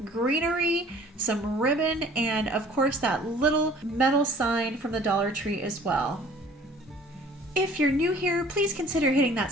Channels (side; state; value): both; normal; correlation 0.51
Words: greenery, some ribbon, and of course that little metal sign from the Dollar Tree as well. If you're new here, please consider hitting that